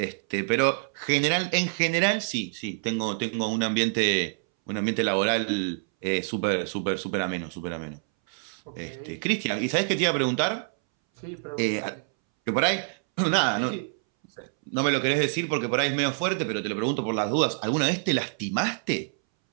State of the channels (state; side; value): silent; left; 60 dB below the other